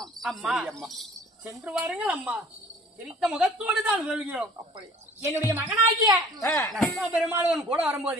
அம்மா, சென்று வாருங்கள் அம்மா. சிரித்த முகத்தோடு தான் சொல்கிறோம். அப்படியா? என்னுடைய மகனாகிய பெருமாள் கூட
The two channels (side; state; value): both; normal; correlation 0.50